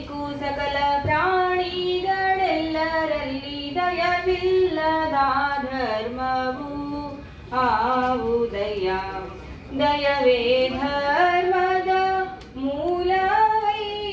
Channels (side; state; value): both; identical; correlation 1.00